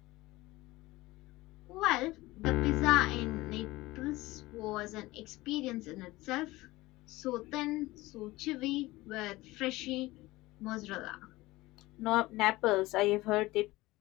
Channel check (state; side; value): quieter; right; 19.5 dB